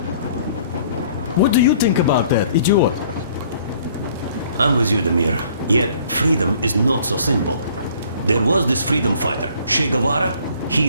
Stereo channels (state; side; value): inverted; both; correlation -0.57